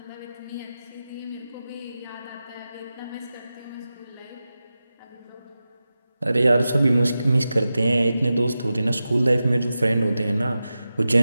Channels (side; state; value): both; inverted; correlation -0.93